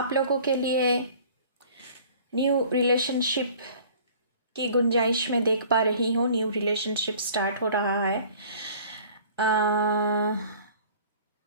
लोगों के लिए न्यू रिलेशनशिप की गुंजाइश में देख पा रही हूँ। न्यू रिलेशनशिप स्टार्ट हो रहा है।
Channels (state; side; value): inverted; both; correlation -0.50